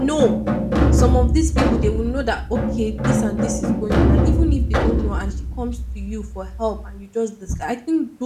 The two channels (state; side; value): identical; both; correlation 1.00